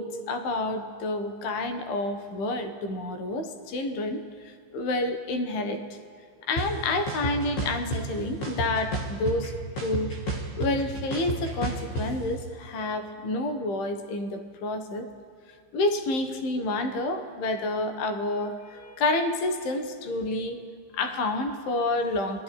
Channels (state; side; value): late; right; 15 ms